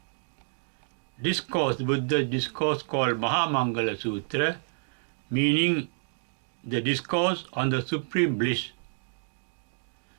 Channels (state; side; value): silent; left; digital silence